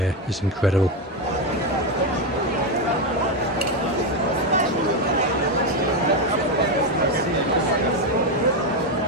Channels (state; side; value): normal; both; correlation 0.09